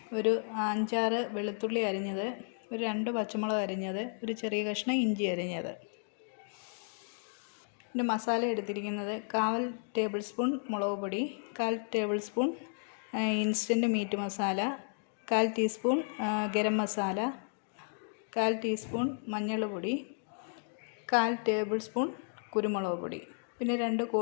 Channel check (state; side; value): silent; right; 56 dB below the other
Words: ഒരു 5-6 വെളുത്തുള്ളി അരിഞ്ഞത്, ഒരു 2 പച്ചമുളക് അരിഞ്ഞത്, ഒരു ചെറിയ കഷ്ണം ഇഞ്ചി അരിഞ്ഞത്. പിന്നെ മസാല എടുത്തിരിക്കുന്നത് 1/4 ടേബിൾ സ്പൂൺ മുളക് പൊടി, 1/4 table spoon instant meat masala, 1/4 teaspoon garam masala, 1/4 teaspoon മഞ്ഞൾപ്പൊടി, 1/4 ടേബിൾ സ്പൂൺ കുരുമുളക് പൊടി. പിന്നെ 2